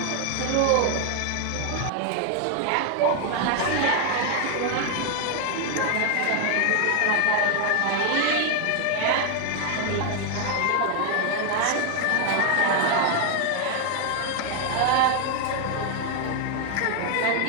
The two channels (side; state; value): both; different; correlation 0.01